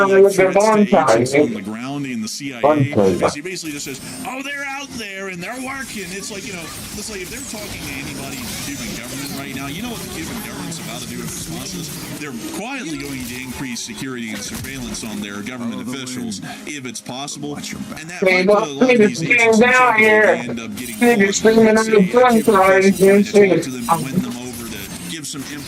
agents on the ground in the CIA, because he basically just says, oh, they're out there and they're working. It's like, it's like if they're talking to anybody in the Cuban government right now, you know what the Cuban government's about to do in response to this? They're quietly going to increase security and surveillance on their government officials, if it's possible, and that might put a lot of these agents in trouble. They end up getting caught to them and win them over to give some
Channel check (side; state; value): both; identical; correlation 1.00